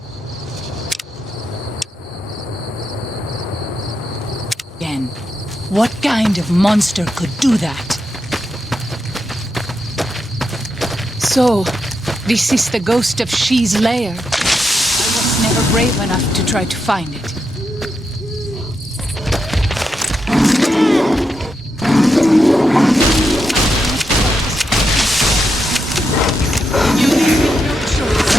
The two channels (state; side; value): normal; both; correlation 0.84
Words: What kind of monster could do that? So, this is the ghost of She's lair. I was never brave enough to try to find it.